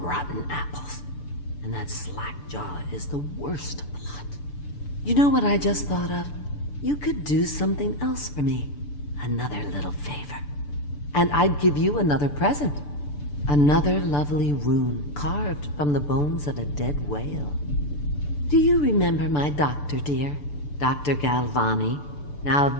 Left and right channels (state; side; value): late; right; 6.8 ms